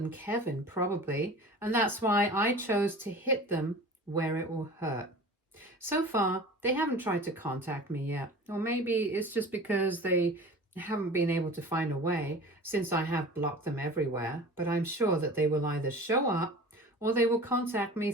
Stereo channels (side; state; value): both; normal; correlation 0.39